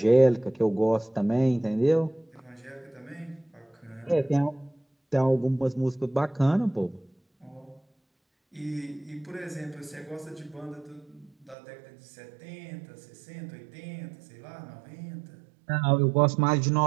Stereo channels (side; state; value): left; drops out; at 11.6 s